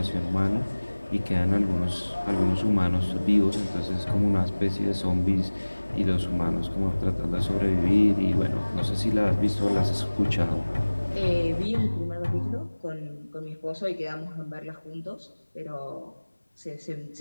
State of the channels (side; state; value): both; inverted; correlation -1.00